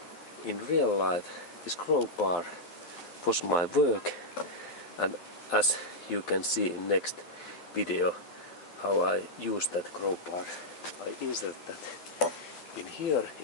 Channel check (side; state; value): right; late; 12 ms